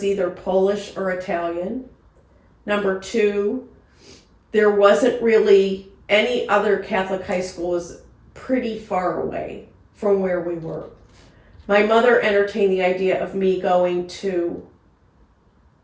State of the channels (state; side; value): identical; both; correlation 1.00